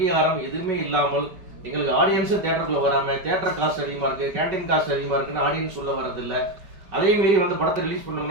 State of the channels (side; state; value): left; late; 5.3 ms